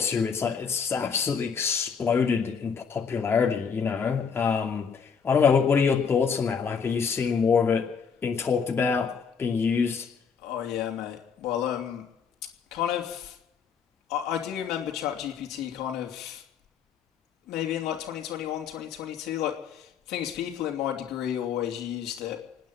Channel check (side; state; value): right; quieter; 6.3 dB